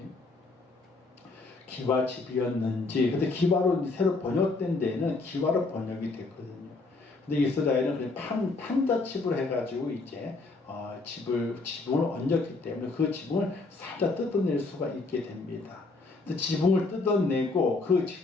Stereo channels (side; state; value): right; quieter; 3.6 dB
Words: 기와집이었는지, 근데 기와로 새로 번역된 데에는 기와로 번역이 됐거든요. 근데 이스라엘은 그냥 판자칩을 해가지고 이제 지붕을 얹었기 때문에 그 지붕을 살짝 뜯어낼 수가 있게 됩니다. 지붕을 뜯어내고 그